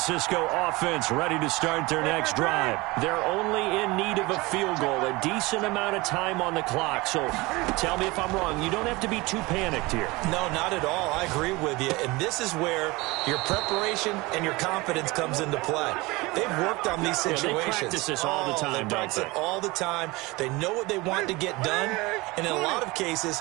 offense ready to start their next drive. They're only in need of a field goal, a decent amount of time on the clock. So tell me if I'm wrong. You don't have to be too panicked here. No, not at all. I agree with you. And this is where your preparation and your confidence comes into play. They've worked on these situations. Yeah, they practice this all the time, they practice it all the time. They know what they want to get done. And in a lot of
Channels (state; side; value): quieter; left; 22.8 dB